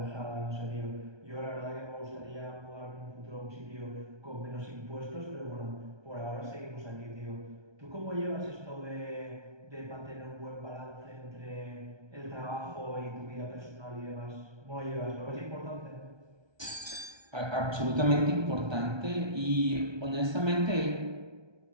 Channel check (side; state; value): left; late; 1.3 ms